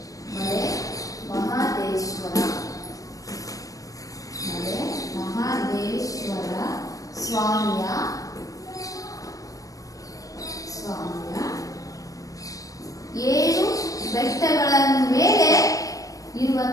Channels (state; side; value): late; right; 0.16 ms